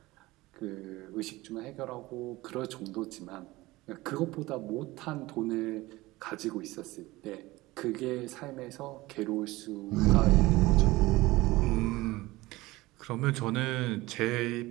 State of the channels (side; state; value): left; quieter; 19.6 dB